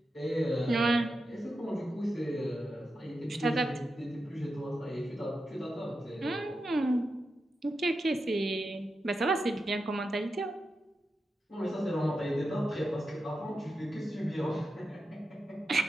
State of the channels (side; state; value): both; normal; correlation 0.89